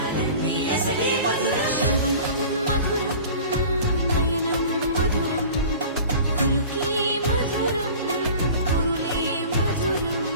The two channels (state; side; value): inverted; both; correlation -0.41